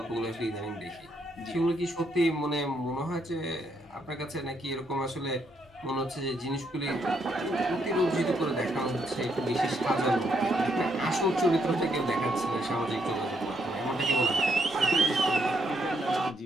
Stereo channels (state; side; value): normal; both; correlation 0.75